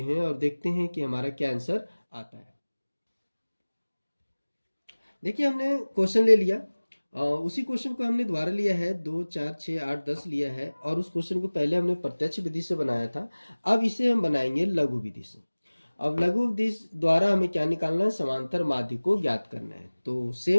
हैं और देखते हैं कि हमारा क्या आंसर आता है। देखिए हमने क्वेश्चन ले लिया, उसी क्वेश्चन को हमने दोबारा लिया है, 2 4 6 8 10 लिया है, और उस क्वेश्चन को पहले हमने प्रत्यक्ष विधि से बनाया था। अब इसे हम बनाएंगे लघु विधि से। अब लघु विधि द्वारा हमें क्या निकालना है, समांतर माध्य को ज्ञात करना है। तो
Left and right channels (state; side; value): inverted; both; correlation -1.00